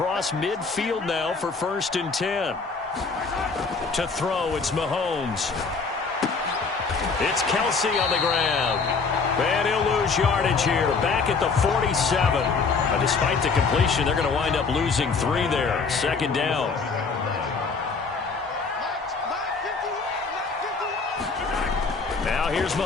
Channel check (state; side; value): quieter; right; 4.7 dB